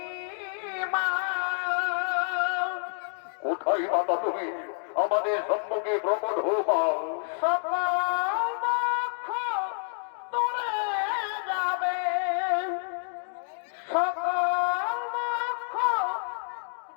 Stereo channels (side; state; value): right; silent; 59 dB below the other